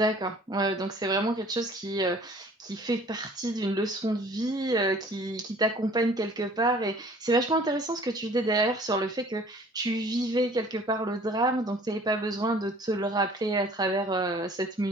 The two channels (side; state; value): both; normal; correlation 0.52